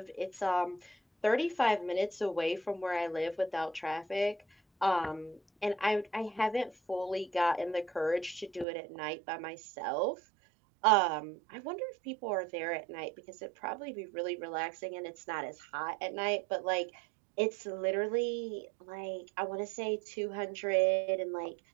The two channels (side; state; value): left; drops out; at 8.7 s